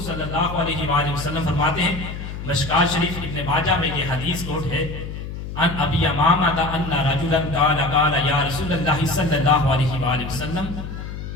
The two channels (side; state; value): left; noise; hum, 8 dB below the sound